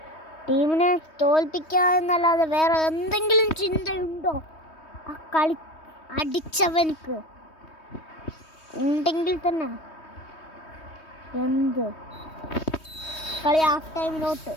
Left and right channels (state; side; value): late; right; 3.2 ms